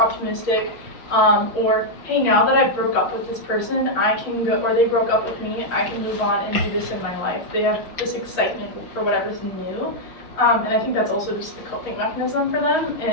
or hey, now that I broke up with this person, I can go, or they broke up with me, I can move on and do this in my life. They have this excitement for whatever's new, and I think that's also just a coping mechanism for them,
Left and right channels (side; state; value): right; late; 5.8 ms